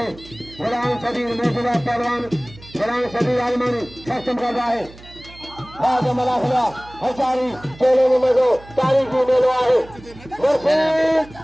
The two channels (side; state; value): right; noise; hum, 20 dB below the sound